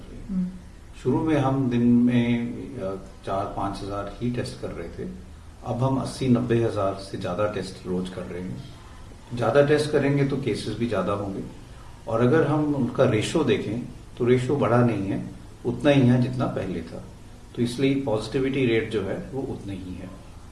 रहे हैं। शुरू में हम दिन में 4-5 हजार ही टेस्ट कर रहे थे, अब हम 80-90 हजार से ज्यादा टेस्ट रोज कर रहे हैं। ज्यादा टेस्ट करेंगे तो केसेस भी ज्यादा होंगे, और अगर हम उनका रेशो देखें तो रेशो बढ़ा नहीं है, उतना ही है जितना पहले था। तो इसलिए पॉजिटिविटी रेट जो है वो उतना ही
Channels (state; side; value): identical; both; correlation 1.00